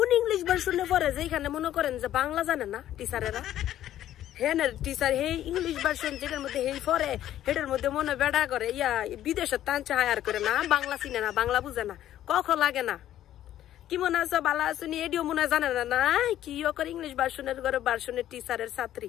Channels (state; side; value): quieter; right; 12.3 dB